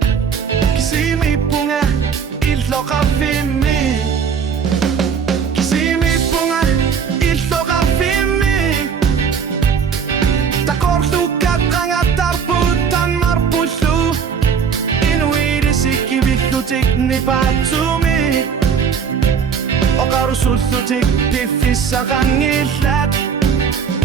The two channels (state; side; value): quieter; left; 6.7 dB